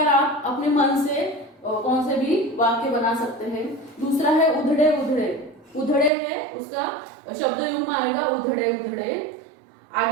आप अपने मन से कौन से भी वाक्य बना सकते हैं। दूसरा है उधड़े उधड़े। उधड़े है, उसका शब्द युग्म आएगा उधड़े उधड़े।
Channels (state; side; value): drops out; left; at 6.1 s